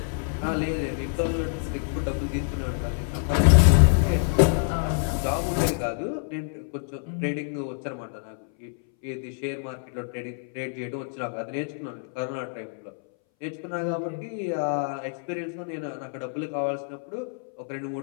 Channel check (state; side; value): silent; right; 60 dB below the other